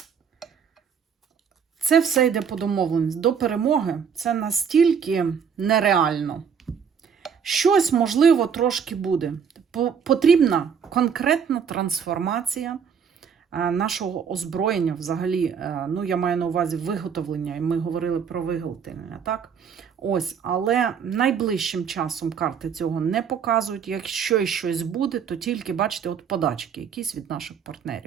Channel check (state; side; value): quieter; left; 7.0 dB